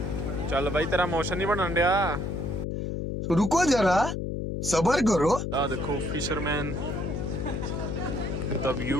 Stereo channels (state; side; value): noise; left; hum, 3 dB below the sound